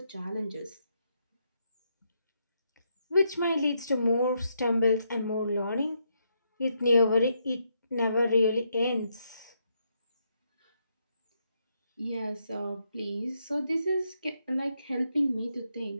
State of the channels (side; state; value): both; inverted; correlation -0.79